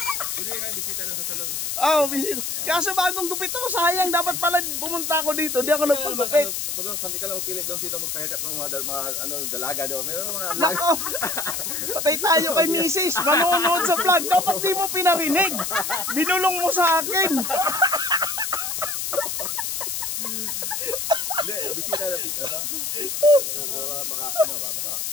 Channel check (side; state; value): left; noise; hiss, 2 dB below the sound